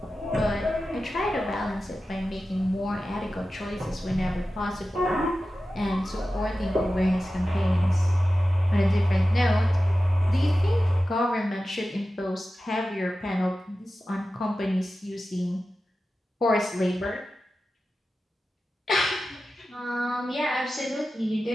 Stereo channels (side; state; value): both; normal; correlation 0.94